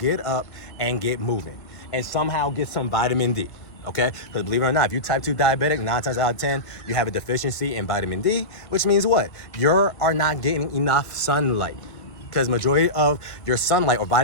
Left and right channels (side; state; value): right; late; 1.7 ms